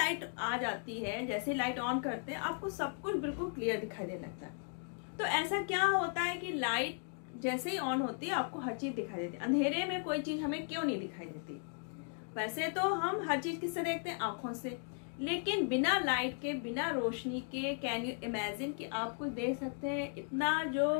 आ जाती है, जैसे ही लाइट ऑन करते हैं, आपको सब कुछ बिल्कुल क्लियर दिखाई देने लगता है। तो ऐसा क्या होता है कि लाइट जैसे ही ऑन होती है आपको हर चीज दिखाई देती है? अंधेरे में कोई चीज हमें क्यों नहीं दिखाई देती? वैसे तो हम हर चीज किससे देखते हैं? आंखों से। लेकिन बिना लाइट के, बिना रोशनी के, कैन यू इमेजिन कि आप कुछ देख सकते हैं? इतना जो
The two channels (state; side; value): silent; right; 53 dB below the other